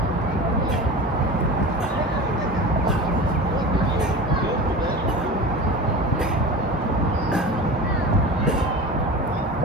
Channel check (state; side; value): normal; both; correlation 0.32